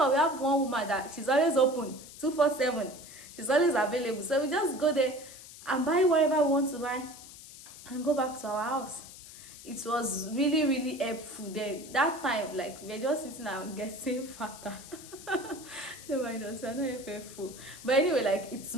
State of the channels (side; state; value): left; noise; hiss, 16 dB below the sound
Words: have one woman that she's always open 247, she's always available, so we just go there and buy whatever we want to buy and go back to our house. It was really, really helpful then. That time, like, we were just sitting and getting fatter. No mind us, we're not faithful. But anyway, like, it's